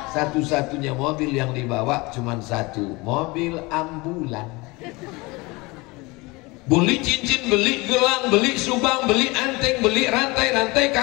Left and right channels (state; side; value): quieter; right; 24.3 dB